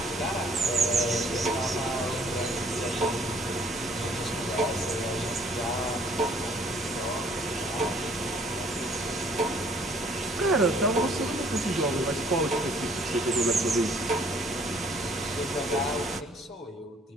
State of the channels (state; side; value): normal; both; correlation 0.60